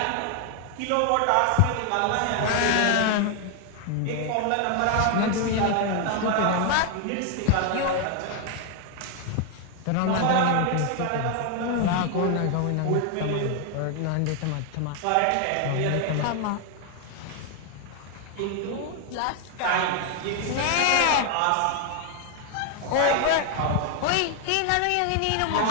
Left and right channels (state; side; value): different; both; correlation 0.00